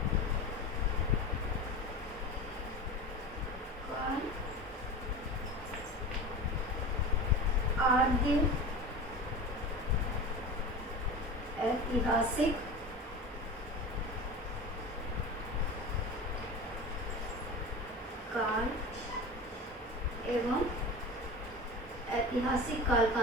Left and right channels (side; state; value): both; normal; correlation 0.31